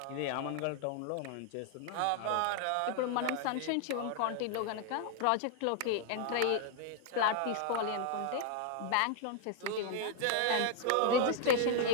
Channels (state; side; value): different; both; correlation 0.00